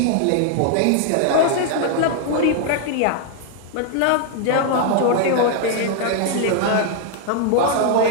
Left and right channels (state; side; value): different; both; correlation 0.00